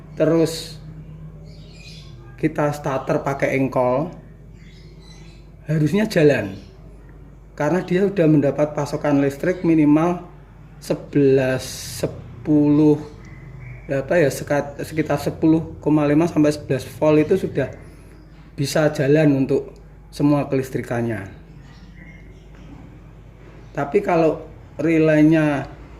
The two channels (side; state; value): both; identical; correlation 1.00